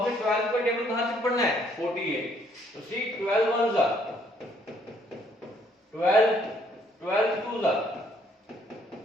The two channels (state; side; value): normal; both; correlation 0.66